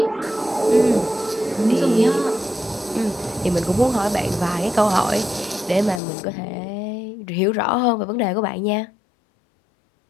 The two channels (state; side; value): drops out; right; at 6.0 s